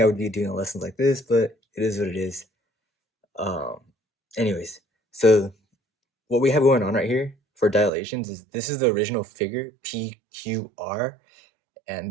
I would be doing lessons like this, but it is what it is. Um, anyways, so what we have going on right here for dilations is this is the original figure, PQR, and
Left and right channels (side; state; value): left; drops out; at 7.9 s